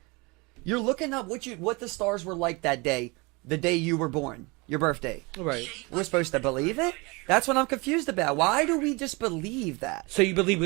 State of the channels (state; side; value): quieter; left; 26.8 dB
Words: You're looking up what the stars were like that day, the day you were born, your birthday. Right. We're supposed to believe it. That's what I'm confused about. Why do we just believe that? So you believe